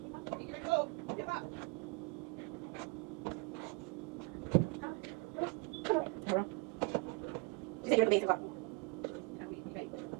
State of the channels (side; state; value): left; quieter; 29.8 dB